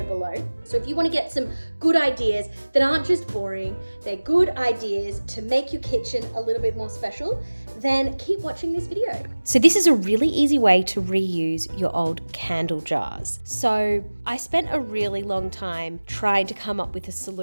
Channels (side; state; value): both; inverted; correlation -1.00